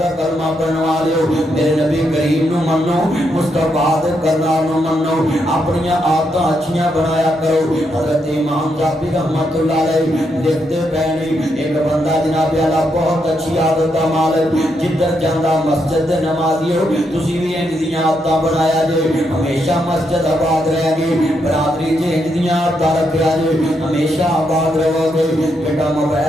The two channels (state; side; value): normal; both; correlation 0.80